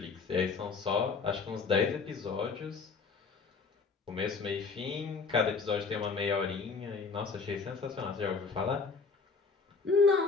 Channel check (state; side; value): quieter; right; 4.8 dB